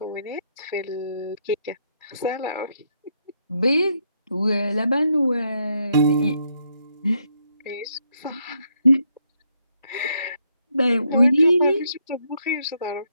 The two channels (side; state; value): both; inverted; correlation -0.76